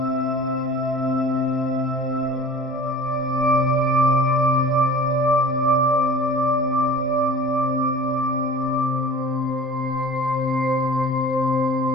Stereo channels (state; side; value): normal; both; correlation 0.42